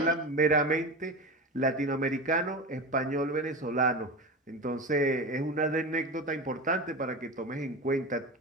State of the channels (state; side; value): normal; both; correlation 0.25